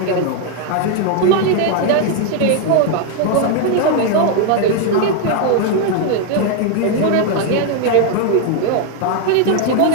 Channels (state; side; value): different; both; correlation 0.01